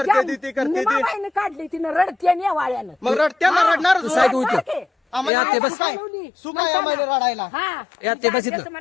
ती, ती करते ती निमाबाईनं काढली तिनं रडते आणि या वाळ्यानं मग रडत्यांना रडणार तू साईड होईल रडते. आम्हाला या, ते बस. सुख आहे. सुख आहे आम्हाला रडायला हा या, ते बस इथं. त्याचं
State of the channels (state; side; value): drops out; right; at 5.3 s